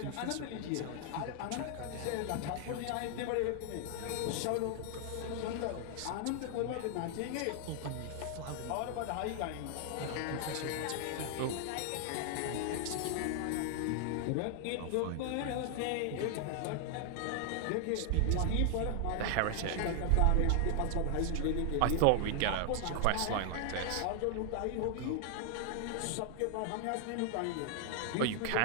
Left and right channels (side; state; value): both; different; correlation 0.00